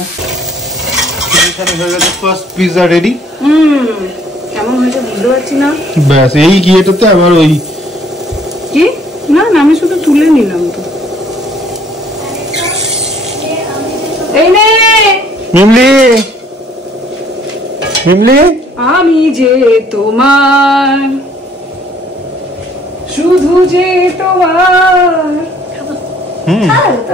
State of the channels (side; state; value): both; normal; correlation 0.60